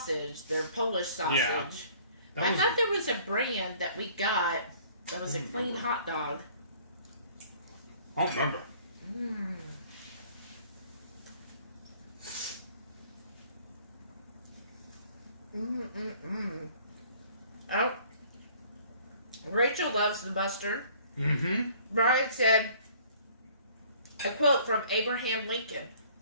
their Polish sausage. Yeah. I thought there was a brand that we got that was a clean hot dog. I don't remember. Oh, Rachel loves the mustard. Brian said, a quote from Abraham Lincoln.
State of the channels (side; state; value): both; inverted; correlation -0.55